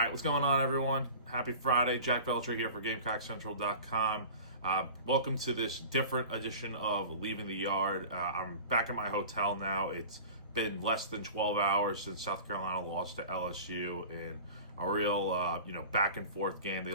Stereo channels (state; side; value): inverted; both; correlation -0.39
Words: what's going on, everyone? Happy Friday. Jack Veltri here for GamecockCentral.com. Welcome to this different edition of Leaving the Yard. I'm back at my hotel now. It's been less than 12 hours since South Carolina lost to LSU in a real, back and forth game. They